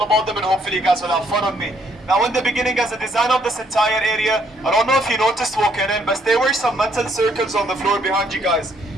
about them, and hopefully you guys will have fun with me. Now in the beginning, as a design of this entire area, I don't know if you noticed walking in, but there were some metal circles on the floor behind you guys.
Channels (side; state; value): both; normal; correlation 0.69